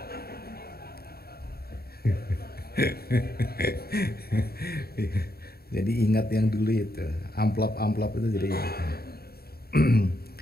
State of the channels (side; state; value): right; late; 0.45 ms